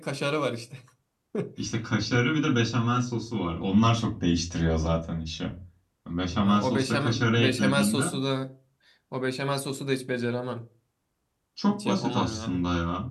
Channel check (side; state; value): both; identical; correlation 1.00